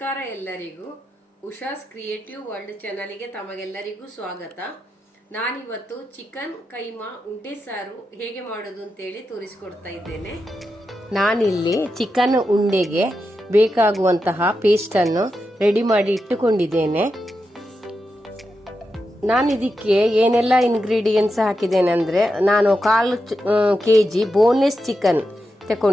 ಎಲ್ಲರಿಗೂ. Usha's creative world ಚಾನಲ್ಗೆ ತಮಗೆಲ್ಲರಿಗೂ ಸ್ವಾಗತ. ನಾನಿವತ್ತು ಚಿಕನ್ ಕೈಮಾ ಉಂಡೆ ಸಾರು ಹೇಗೆ ಮಾಡೋದು ಅಂತೇಳಿ ತೋರಿಸ್ಕೊಡ್ತಾ ಇದ್ದೇನೆ. ನಾನಿಲ್ಲಿ ಚಿಕನ್ ಉಂಡೆಗೆ ಬೇಕಾಗುವಂತಹ ಪೇಸ್ಟನ್ನು ರೆಡಿ ಮಾಡಿ ಇಟ್ಟುಕೊಂಡಿದ್ದೇನೆ. ನಾನು ಇದಕ್ಕೆ ಏನೆಲ್ಲ ಇಂಗ್ರೀಡಿಯೆಂಟ್ಸ್ ಹಾಕಿದ್ದೇನೆ ಅಂದರೆ, ನಾನು 1/4 kg ಬೋನ್ಲೆಸ್ ಚಿಕನ್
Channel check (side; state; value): both; normal; correlation 0.88